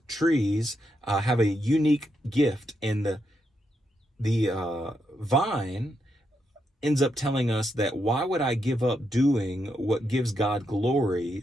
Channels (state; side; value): normal; both; correlation 0.81